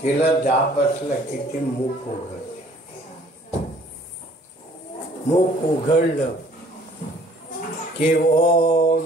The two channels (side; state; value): both; normal; correlation 0.56